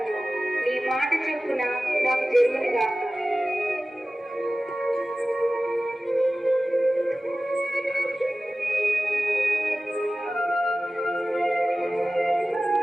నీ మాట చొప్పున నాకు జరుగునుగాక.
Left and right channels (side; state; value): both; normal; correlation 0.96